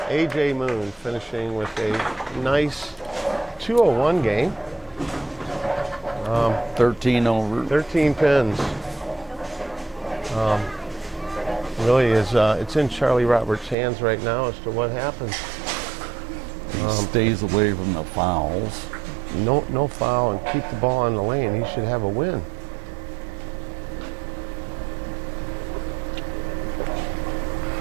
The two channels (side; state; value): left; drops out; at 13.8 s